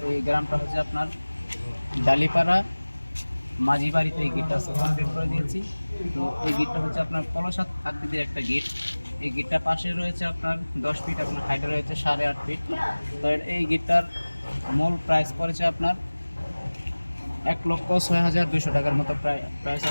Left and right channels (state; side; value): inverted; both; correlation -1.00